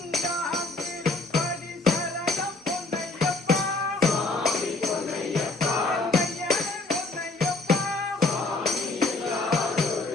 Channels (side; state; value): right; quieter; 3.2 dB